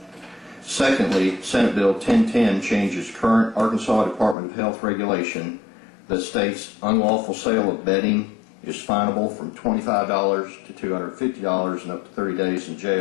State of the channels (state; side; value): drops out; right; at 4.4 s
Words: Secondly, Senate Bill 1010 changes current Arkansas Department of Health regulation that states unlawful sale of bedding is finable from $25 to $250 and up to 30 days in